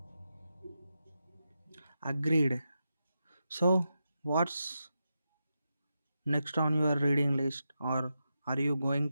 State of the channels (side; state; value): both; inverted; correlation -0.88